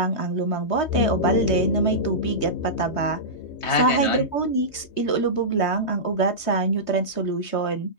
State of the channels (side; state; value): right; late; 3.2 ms